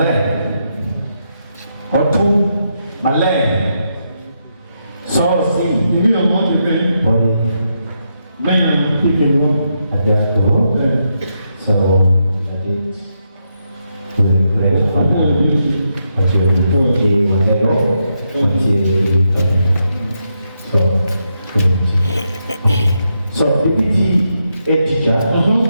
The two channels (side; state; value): both; inverted; correlation -0.82